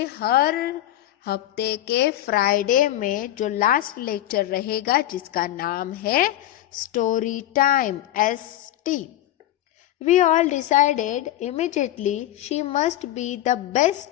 हर हफ्ते के फ्राइडे में जो लास्ट लेक्चर रहेगा जिसका नाम है story time, ST. We all decided immediately she must be the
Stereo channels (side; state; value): right; quieter; 13.7 dB